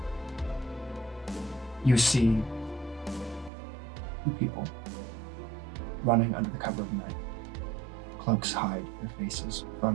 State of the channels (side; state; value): left; drops out; at 3.5 s